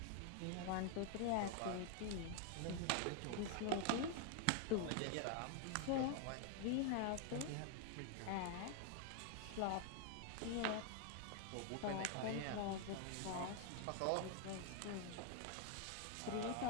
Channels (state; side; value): different; both; correlation 0.00